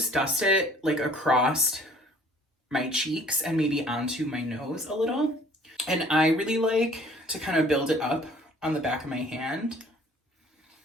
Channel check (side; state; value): both; normal; correlation 0.54